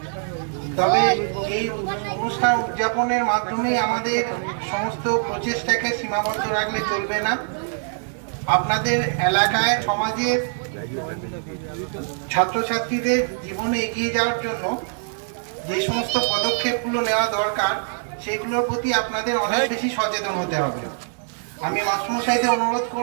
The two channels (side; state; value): left; silent; digital silence